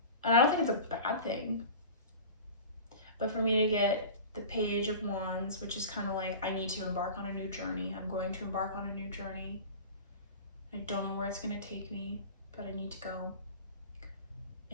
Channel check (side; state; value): both; inverted; correlation -0.35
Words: And I don't think it's a bad thing. But for me to get the Page of Wands, which is kind of like, I need to embark on a new journey. I'm going to embark on a new journey. I don't know where it's going to take me, but I need to go.